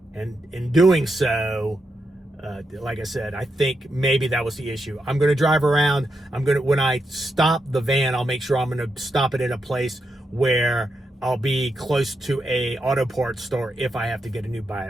And in doing so, like I said, I think maybe that was the issue. I'm going to drive around. When I stop the van, I'll make sure I'm going to stop it in a place where I'll be close to a auto parts store if I have to get a new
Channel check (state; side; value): normal; both; correlation 0.84